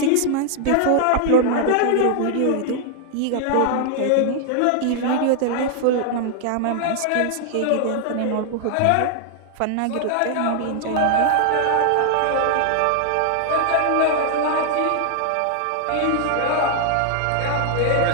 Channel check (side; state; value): both; different; correlation 0.00